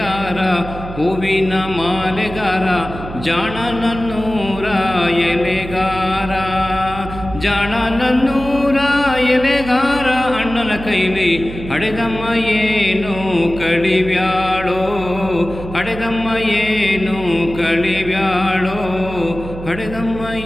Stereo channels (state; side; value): noise; right; hum, 11 dB below the sound